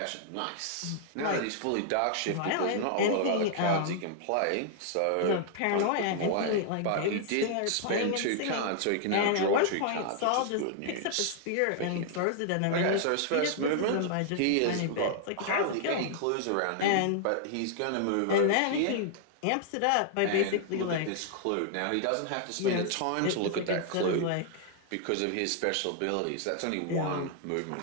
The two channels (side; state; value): both; different; correlation -0.01